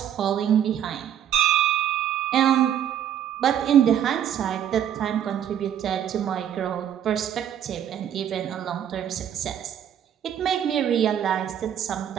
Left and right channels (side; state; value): left; quieter; 9.8 dB